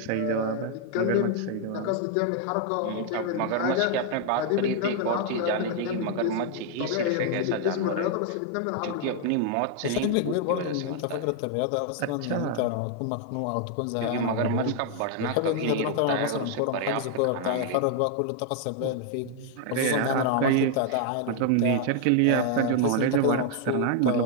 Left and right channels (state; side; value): different; both; correlation 0.00